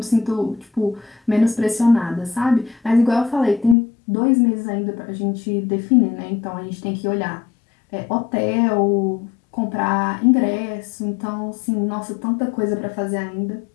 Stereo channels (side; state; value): right; drops out; at 3.8 s